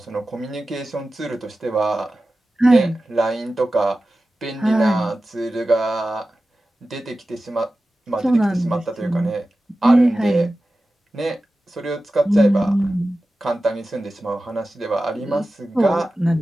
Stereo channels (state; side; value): normal; both; correlation 0.94